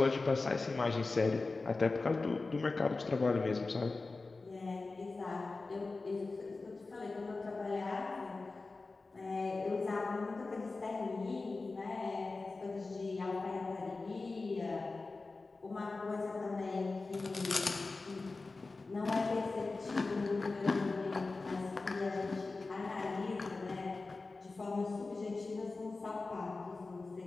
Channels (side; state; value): right; quieter; 3.6 dB